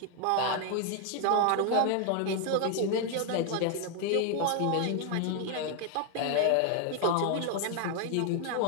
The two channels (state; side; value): different; both; correlation 0.01